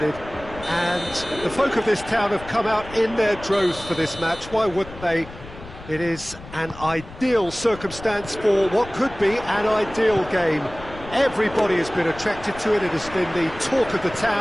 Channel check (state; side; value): noise; left; rumble, 16 dB below the sound